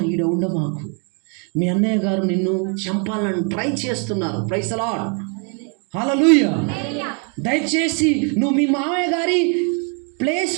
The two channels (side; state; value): left; quieter; 38.5 dB